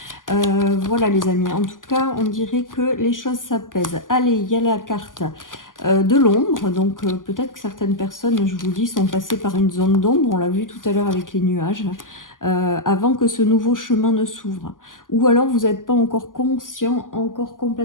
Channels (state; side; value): late; right; 0.88 ms